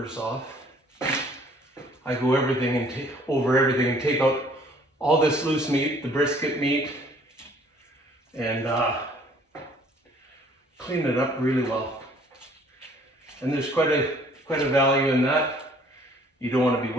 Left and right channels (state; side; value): normal; both; correlation 0.58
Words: off, I go over everything and take out all this loose meat, the brisket meat, and clean it up really well. And there's quite a value in that. You don't want to be